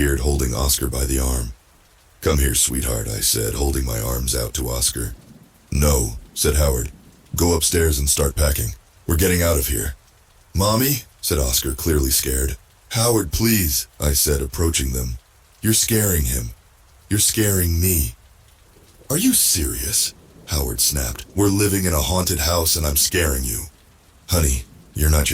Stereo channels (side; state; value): both; identical; correlation 1.00